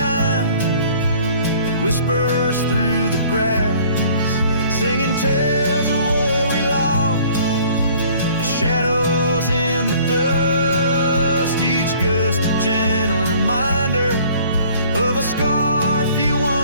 whispers through the grass, singing tales of what we lost, the shadows in the dust, each gust a gentle reminder of a scarf you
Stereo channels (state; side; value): inverted; both; correlation -0.54